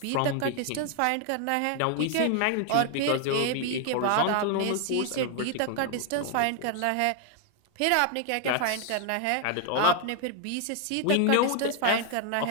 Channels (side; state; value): both; different; correlation 0.00